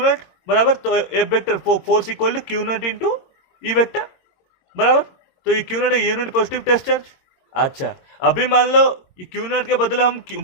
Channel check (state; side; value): late; right; 22 ms